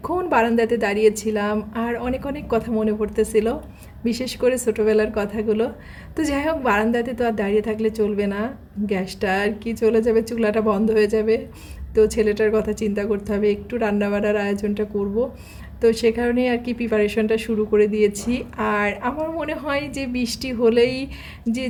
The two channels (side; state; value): both; identical; correlation 1.00